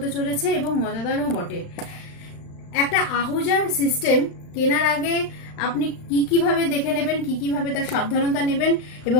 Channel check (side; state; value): right; late; 35 ms